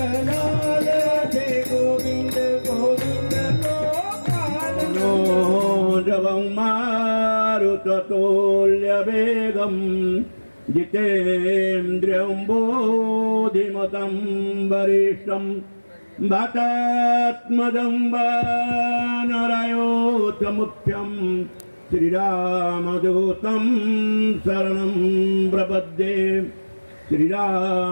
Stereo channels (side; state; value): both; inverted; correlation -1.00